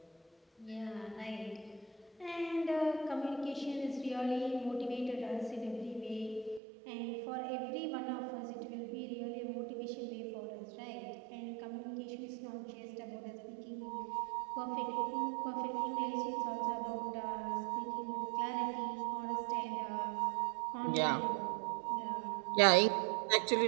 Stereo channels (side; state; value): left; drops out; at 6.6 s